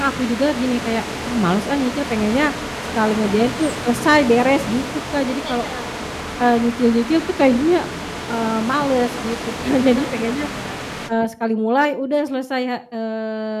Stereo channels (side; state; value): both; identical; correlation 1.00